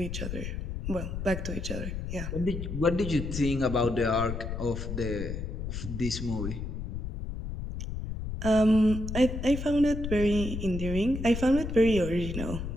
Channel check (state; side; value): noise; left; rumble, 5 dB below the sound